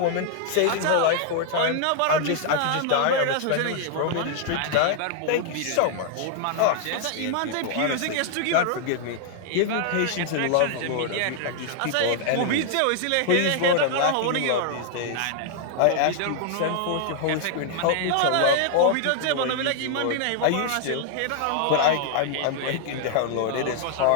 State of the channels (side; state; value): both; different; correlation -0.01